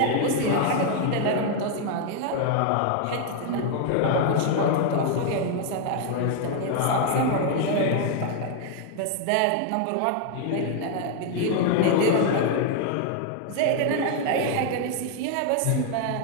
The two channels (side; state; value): both; different; correlation 0.00